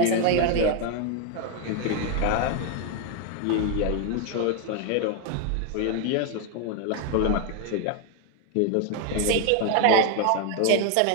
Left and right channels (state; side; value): different; both; correlation 0.01